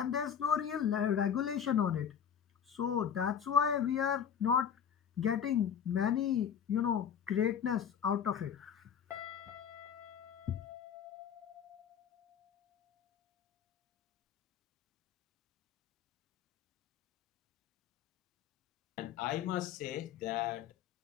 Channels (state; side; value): quieter; right; 8.2 dB